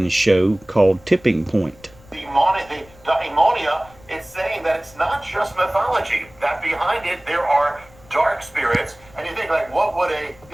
show called Tipping Point. The daimonia is saying that it's not just mythology, that behind it there are dark spirits, and you think, like, what would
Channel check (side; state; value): left; noise; rumble, 25 dB below the sound